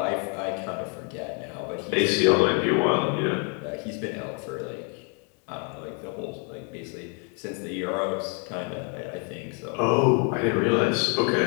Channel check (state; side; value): quieter; right; 38.9 dB